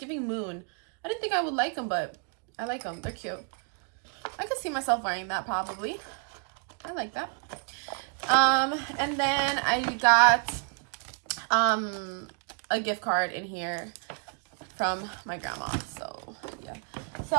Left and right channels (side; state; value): left; quieter; 37.9 dB